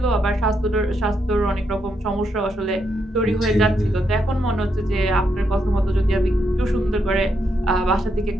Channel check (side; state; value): both; normal; correlation 0.79